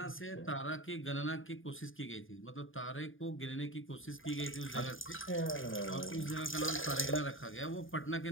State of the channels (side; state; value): right; late; 0.58 ms